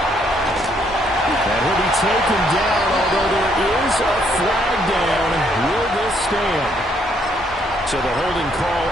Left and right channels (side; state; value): both; normal; correlation 0.70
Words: He'll be taken down, although there is a flag down. Will this stand? So the holding call